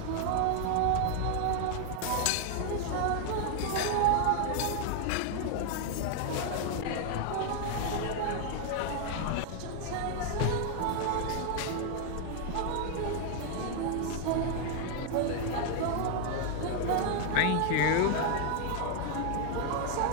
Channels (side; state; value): both; different; correlation 0.00